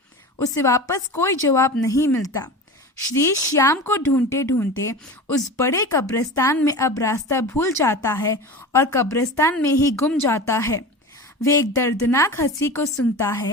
उसे वापस कोई जवाब नहीं मिलता। श्रीश श्याम को ढूंढते ढूंढते उस बड़े कब्रिस्तान में अब रास्ता भूल जाता है और कब्रिस्तान में ही गुम जाता है। वे एक दर्दनाक हंसी को सुनता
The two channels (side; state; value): both; normal; correlation 0.31